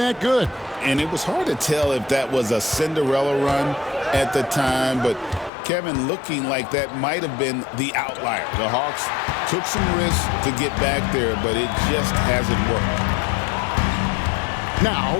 good. And it was hard to tell if that was a Cinderella run at the time, but Kevin, looking like that might have been the outlier. The Hawks took some risks to get back there, but it just hasn't worked. Now,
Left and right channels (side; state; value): right; drops out; at 5.5 s